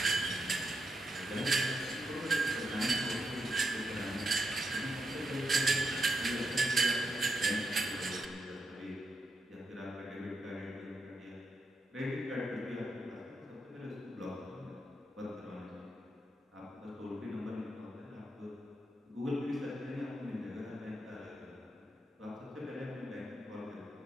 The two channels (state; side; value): normal; both; correlation 0.83